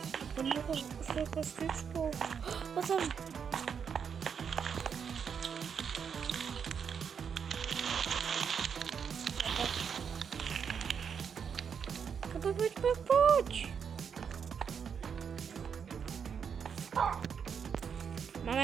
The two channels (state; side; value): quieter; left; 7.0 dB